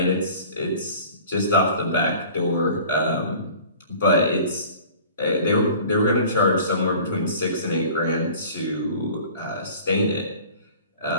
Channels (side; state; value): both; inverted; correlation -0.45